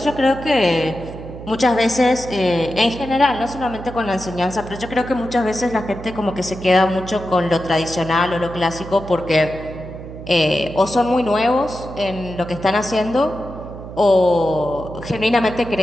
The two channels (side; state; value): right; noise; hum, 12 dB below the sound